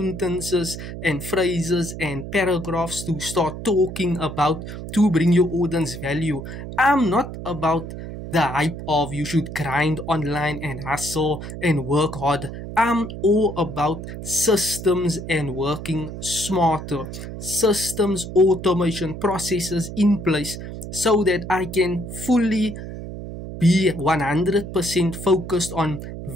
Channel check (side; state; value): right; noise; hum, 9 dB below the sound